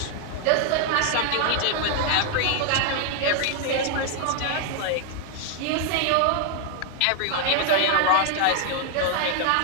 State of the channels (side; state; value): both; different; correlation 0.00